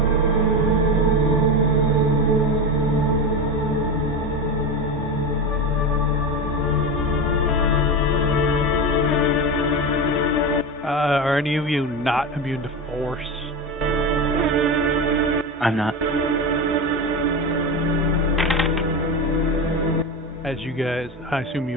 Are any of you not immune to force? I'm not. As you guys, I assume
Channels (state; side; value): normal; both; correlation 0.20